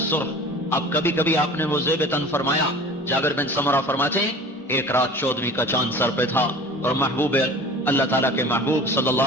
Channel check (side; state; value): both; normal; correlation 0.41